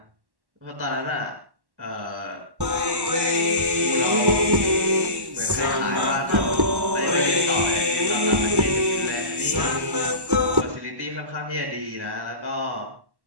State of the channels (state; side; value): late; left; 1.1 ms